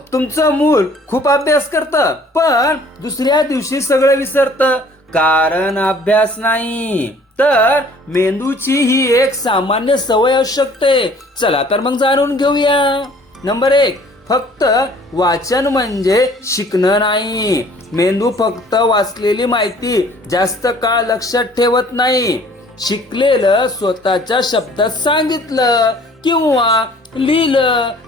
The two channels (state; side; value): normal; both; correlation 0.54